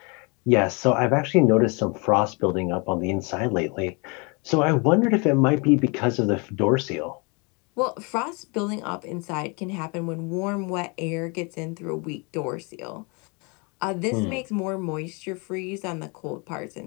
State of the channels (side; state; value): right; quieter; 31.1 dB